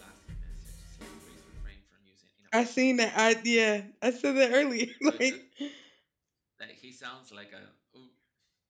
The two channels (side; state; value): both; identical; correlation 1.00